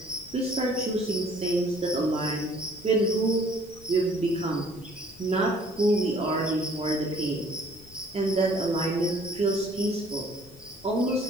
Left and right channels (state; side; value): noise; left; rumble, 23 dB below the sound